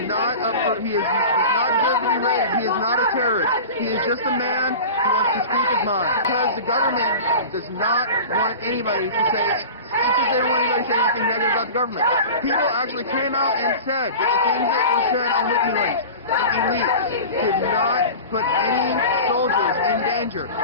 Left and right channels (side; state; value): both; inverted; correlation -0.34